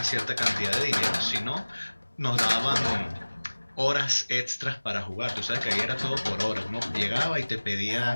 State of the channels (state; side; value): inverted; both; correlation -1.00